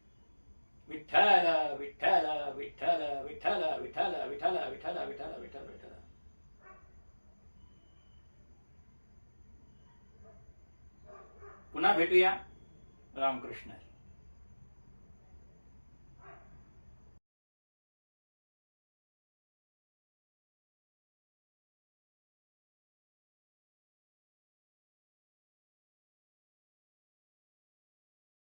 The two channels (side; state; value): both; inverted; correlation -1.00